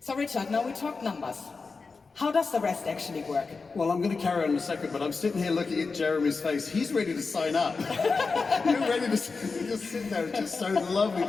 Richard, now we talk numbers. How does the rest actually work? Well, I'm going to carry on in a second, but I'm sitting here looking at Jeremy's face. He's ready to sign up. You're ready to just sit there. It's just so lovely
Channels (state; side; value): quieter; right; 4.4 dB